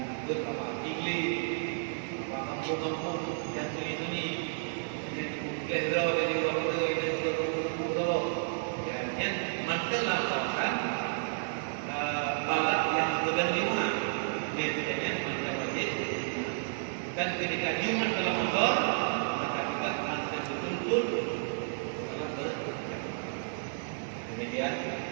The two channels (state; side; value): silent; left; digital silence